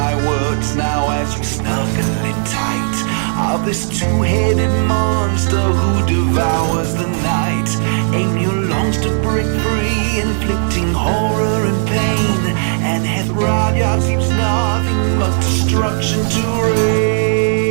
words now as we snuggle in tight of this two-headed monster who devours the night. Angel longs to break free, inflicting horror and pain, and hath Raja keeps nothing but destruction to reign.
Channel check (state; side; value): silent; left; 65 dB below the other